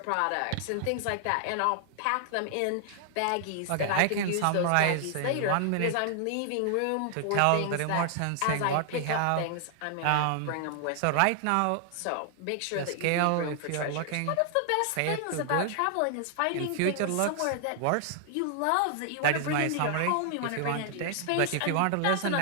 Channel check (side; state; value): both; different; correlation 0.00